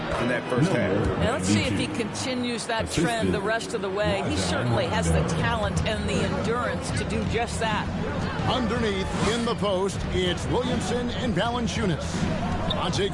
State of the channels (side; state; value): both; identical; correlation 1.00